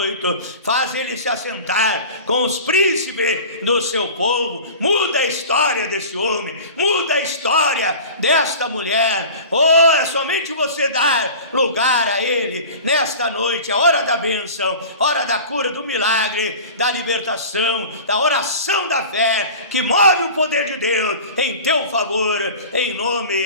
faz ele se assentar com os príncipes do seu povo. Muda a história desse homem, muda a história desta mulher. Oh, é somente você dar lugar a ele nesta noite, a hora da bênção, hora da cura, do milagre, da libertação, da oração da fé, que move o poder de Deus em teu favor, em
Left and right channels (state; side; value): inverted; both; correlation -0.38